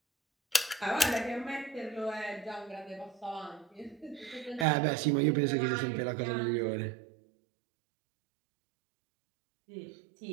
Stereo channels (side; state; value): left; drops out; at 4.7 s